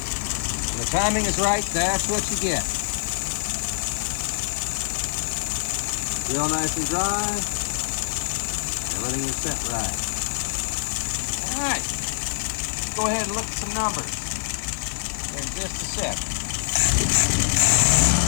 When the timing is right, that's what you get. Real nice and dry. Everything is set right. All right, let's go ahead and look at some numbers in just a sec.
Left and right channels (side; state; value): right; silent; digital silence